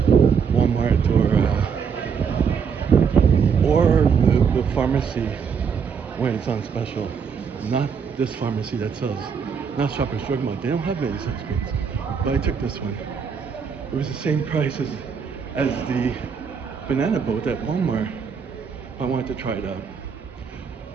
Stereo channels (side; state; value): left; quieter; 6.4 dB